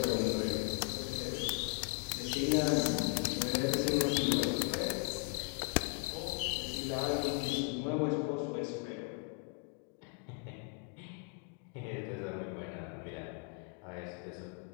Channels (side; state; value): right; quieter; 34.4 dB